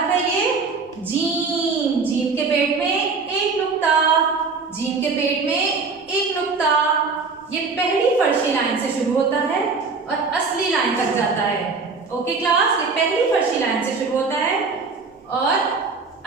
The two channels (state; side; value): quieter; left; 4.5 dB